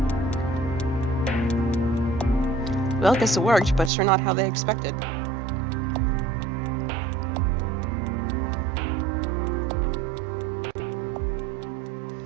Well, guess it worked, but sure not how they expected.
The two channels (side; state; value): left; drops out; at 3.9 s